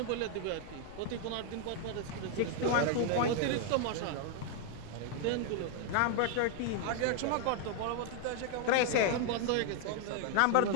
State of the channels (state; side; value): different; both; correlation 0.00